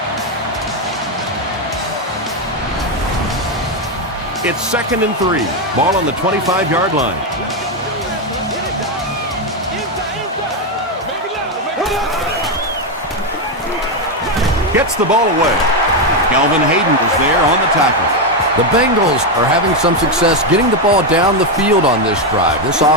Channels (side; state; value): both; normal; correlation 0.06